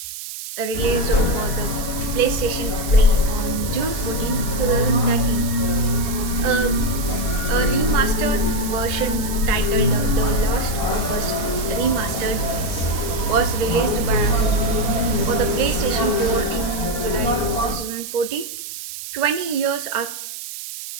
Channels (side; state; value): right; noise; hiss, 9 dB below the sound